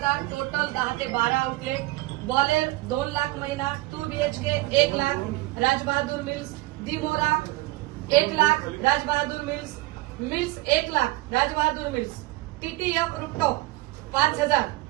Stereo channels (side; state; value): left; quieter; 20.1 dB